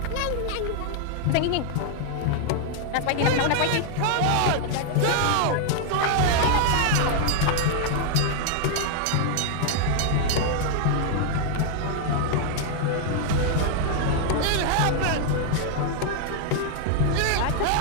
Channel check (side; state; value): both; different; correlation 0.00